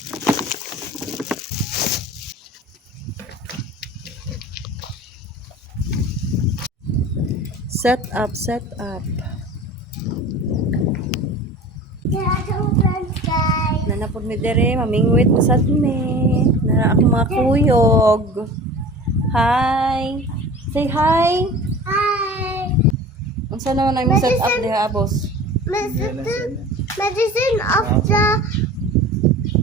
Set up, set up. Nanapod mi dere, mamingwit mo sad mi. Nara ako mga kuyog. Hi. Say hi. Hi. Unsa naman ang set up diha, boss? Medicine of the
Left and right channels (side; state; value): both; normal; correlation 0.39